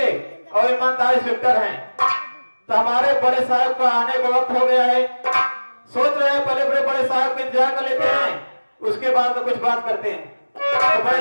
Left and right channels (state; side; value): inverted; both; correlation -1.00